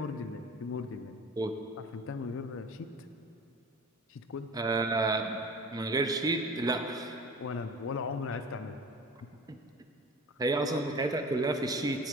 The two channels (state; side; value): normal; both; correlation 0.39